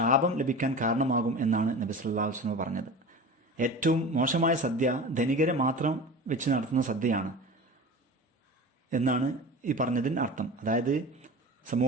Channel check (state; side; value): normal; both; correlation 0.33